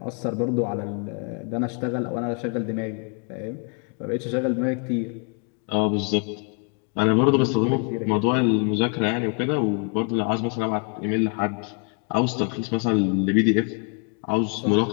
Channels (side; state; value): right; quieter; 38.5 dB